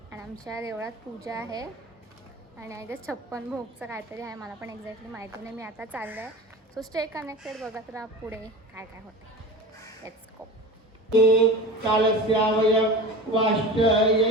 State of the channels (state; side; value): normal; both; correlation 0.33